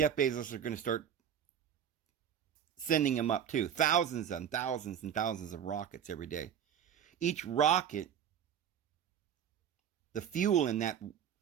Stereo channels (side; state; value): left; quieter; 8.9 dB